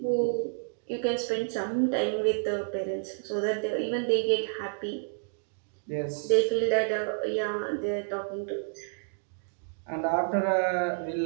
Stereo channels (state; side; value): silent; left; digital silence